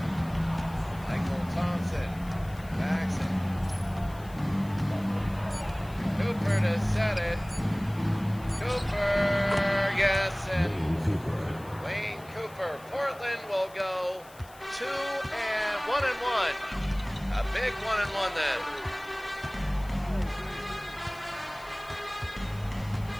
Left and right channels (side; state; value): left; noise; hiss, 23 dB below the sound